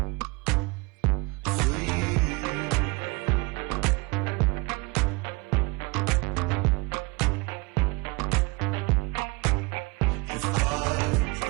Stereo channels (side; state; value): left; quieter; 26.5 dB